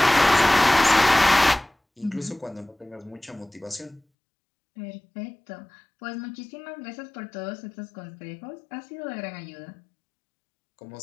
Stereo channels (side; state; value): right; drops out; at 4.0 s